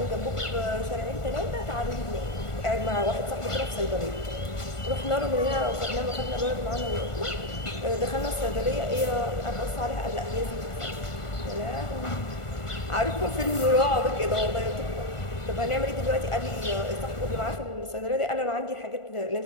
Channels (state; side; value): late; right; 1.4 ms